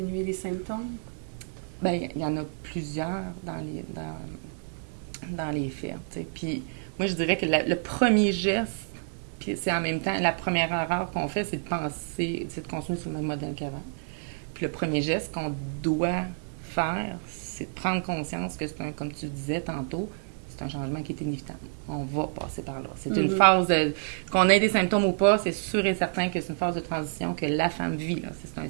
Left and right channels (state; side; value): silent; left; digital silence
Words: les symptômes? Bien, il y en a plusieurs dans les faits. T'sais. Puis moi, je dirais que le premier geste, puis c'est en même temps la première erreur qu'on fait, c'est de penser, c'est de continuer sur le même modèle qu'avant. Puis le premier geste qu'on doit faire, c'est de prendre conscience que c'est comme tu disais tantôt, c'est un changement qui est inévitable. On va passer par là. C'est une phase qu'on ait des symptômes ou pas, c'est sûr et certain que c'est une phase de transition que la femme vit. Là. C'est un